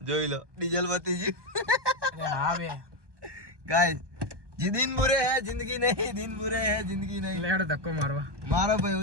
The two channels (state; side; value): late; left; 1.2 ms